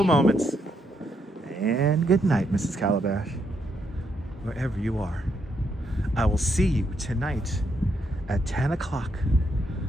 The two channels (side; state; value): both; normal; correlation 0.77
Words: moments. And good night, Mrs. Calabash. Wherever you are. I will see you tonight at 10 o'clock.